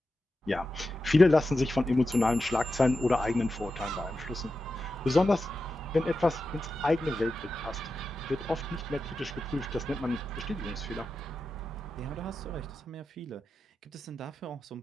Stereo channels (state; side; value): normal; both; correlation 0.91